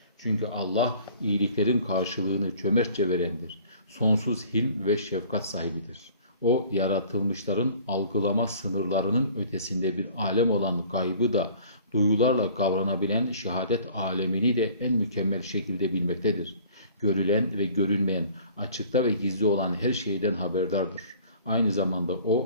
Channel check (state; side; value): inverted; both; correlation -0.50